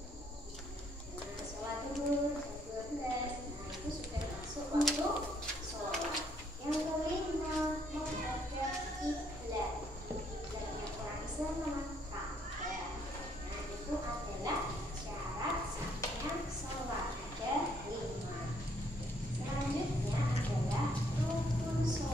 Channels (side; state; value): both; normal; correlation 0.69